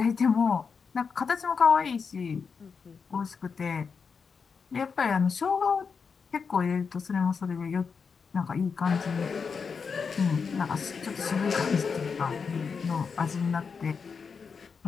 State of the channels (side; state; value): right; quieter; 5.6 dB